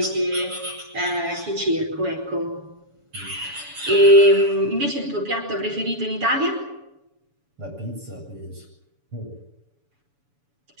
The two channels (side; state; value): left; late; 7.0 ms